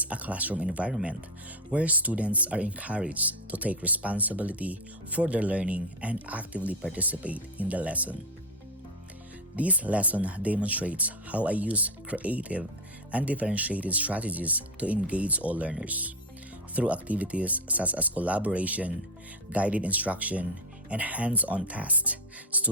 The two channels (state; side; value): normal; both; correlation 0.14